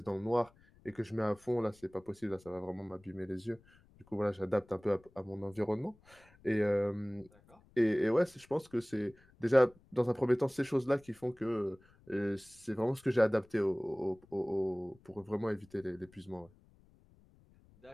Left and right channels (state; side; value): noise; left; rumble, 28 dB below the sound